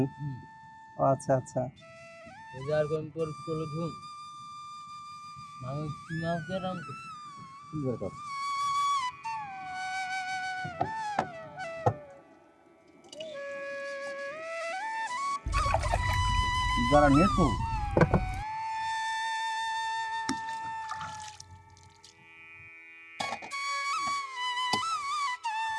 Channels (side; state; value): both; identical; correlation 1.00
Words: ও আচ্ছা আচ্ছা। আর কোন পর করে ধুম আমি কি মাছ দিয়ে রাম করছি। যারা নেছো